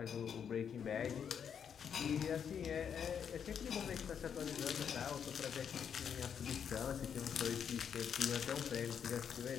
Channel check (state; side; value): quieter; right; 7.7 dB